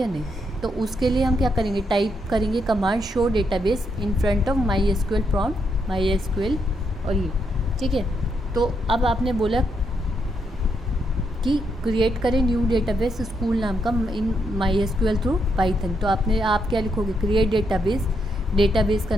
नहीं। तो उसके लिए हम क्या करेंगे? टाइप करेंगे command show database in front of MySQL prompt MySQL और ये, ठीक है। तो अब आपने बोला कि क्रिएट करें न्यू डेटाबेस स्कूल नाम का इन MySQL थ्रू पाइथन। तो आप क्या लिखोगे? क्रिएट डेटाबेस, डेटाबेस का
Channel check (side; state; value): both; normal; correlation 0.79